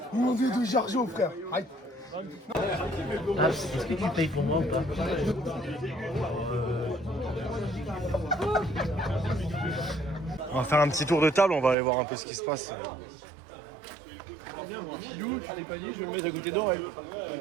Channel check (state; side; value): drops out; left; at 11.8 s